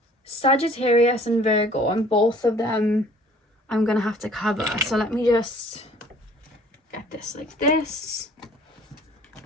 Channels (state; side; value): normal; both; correlation 0.54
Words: Sagittarius and Virgo, and both of them I'm going to have to cover. So let me just get this like this.